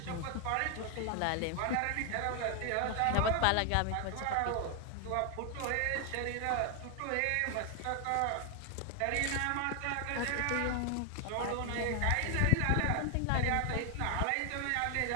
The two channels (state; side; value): different; both; correlation 0.00